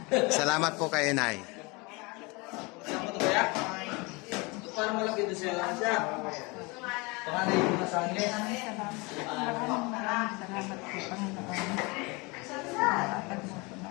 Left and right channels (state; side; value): quieter; right; 26.8 dB